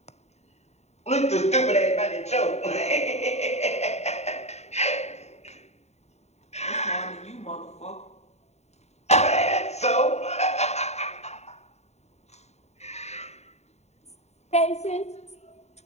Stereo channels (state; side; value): late; right; 0.32 ms